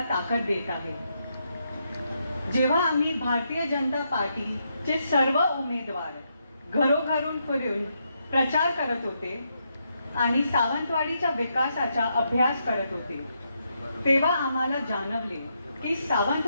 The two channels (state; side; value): inverted; both; correlation -0.80